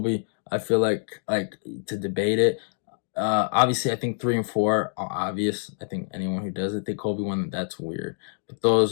I feel like to debate it. Obviously, I think 3 and 4 are obvious. I think anyone who doesn't think Colby won, that's weird. But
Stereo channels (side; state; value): right; silent; digital silence